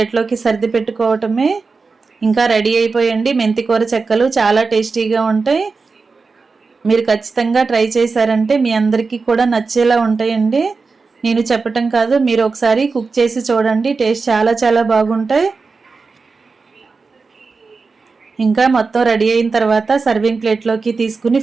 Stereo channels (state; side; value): quieter; left; 4.4 dB